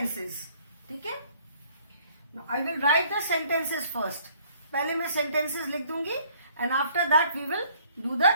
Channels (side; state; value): both; inverted; correlation -0.60